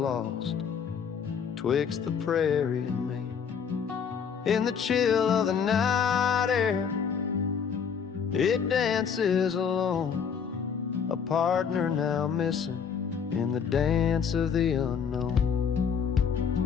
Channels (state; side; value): quieter; right; 6.9 dB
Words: twixt the prairie and me. In the chill of the night air, it dances alone, a partner now missing in the dance of the unknown.